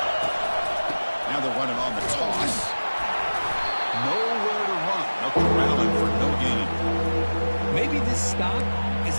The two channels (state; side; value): inverted; both; correlation -1.00